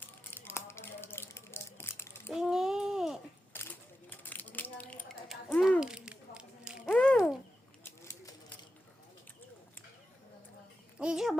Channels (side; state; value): both; normal; correlation 0.90